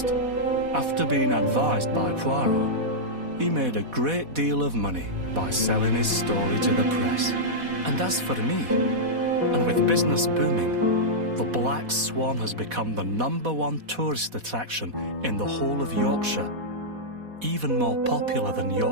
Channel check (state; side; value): late; left; 4.1 ms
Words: after being advised by Poirot, he made a great deal of money by selling his story to the press. And as for me, and with business booming, the Black Swan has become the #1 tourist attraction in the whole of Yorkshire, even more popular than